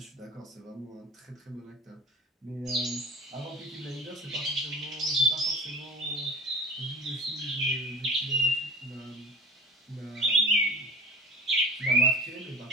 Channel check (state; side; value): normal; both; correlation 0.38